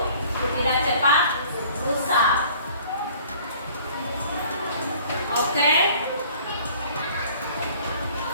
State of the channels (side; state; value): both; inverted; correlation -0.52